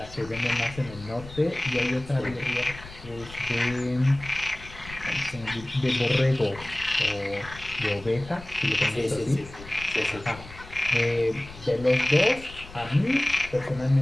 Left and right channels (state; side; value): noise; left; rumble, 16 dB below the sound